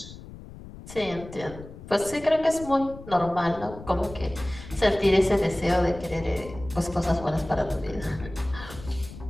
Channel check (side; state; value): left; noise; rumble, 15 dB below the sound